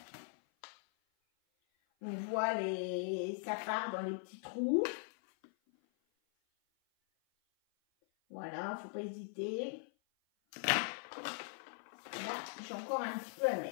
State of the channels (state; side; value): silent; right; 51 dB below the other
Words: On voit ça part dans les petits trous. Voilà, faut pas hésiter. Là, j'ai encore un petit peu à